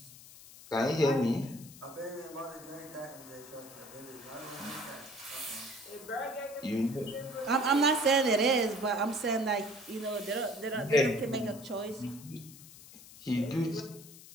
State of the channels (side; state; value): left; noise; hiss, 18 dB below the sound